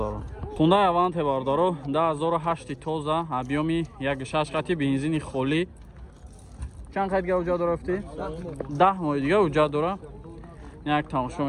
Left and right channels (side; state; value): both; identical; correlation 1.00